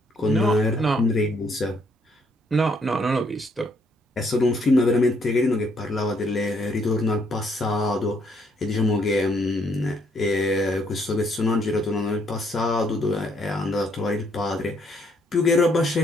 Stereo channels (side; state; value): both; normal; correlation 0.69